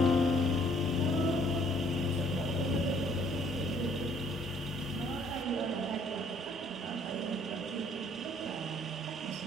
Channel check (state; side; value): normal; both; correlation 0.62